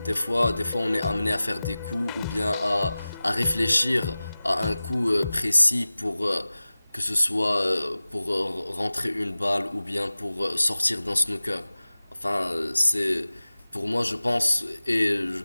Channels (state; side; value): inverted; both; correlation -0.97